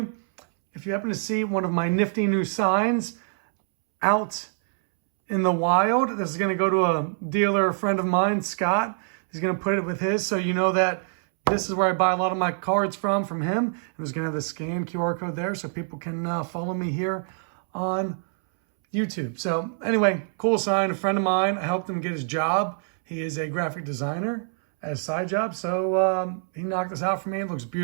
if you happen to see one of my nifty new signs out in the wild, this is going to go to a dealer, a friend of mine, Scott. He's going to put it with his, so you know that this is where I buy a lot of my cards from him. And there's going to have the scan QR code there so people can follow me here on YouTube. So anyway, cool sign. A friend of mine, I helped him get his job. He is a graphic designer at a side job. So he knocked this out for me. It looks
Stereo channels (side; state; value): left; silent; 62 dB below the other